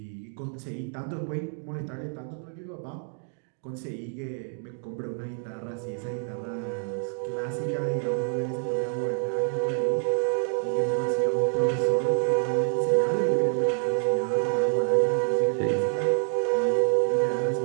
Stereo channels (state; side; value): silent; left; 57 dB below the other